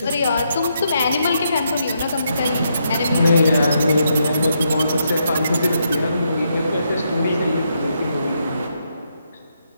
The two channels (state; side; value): inverted; both; correlation -0.79